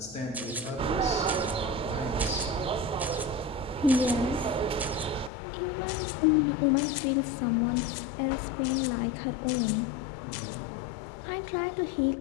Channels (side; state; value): right; drops out; at 5.3 s